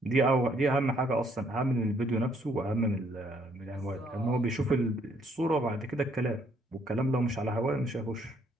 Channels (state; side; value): normal; both; correlation 0.67